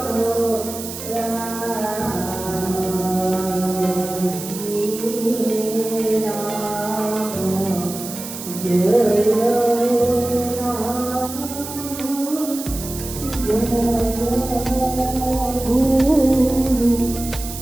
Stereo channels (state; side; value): noise; right; hiss, 10 dB below the sound